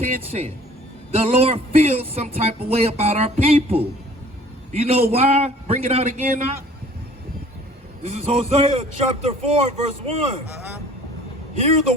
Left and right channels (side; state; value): both; normal; correlation 0.51